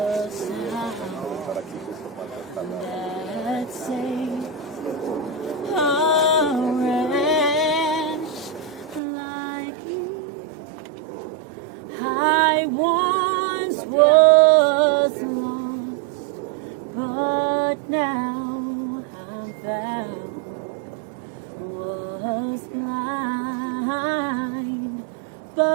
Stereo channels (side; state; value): left; drops out; at 9.0 s